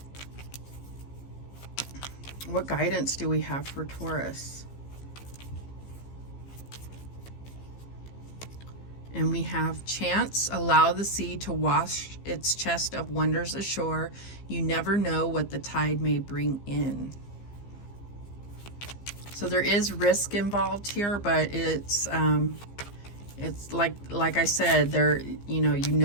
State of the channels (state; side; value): late; right; 15 ms